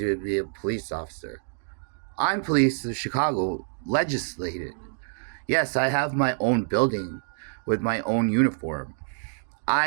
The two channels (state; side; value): silent; left; digital silence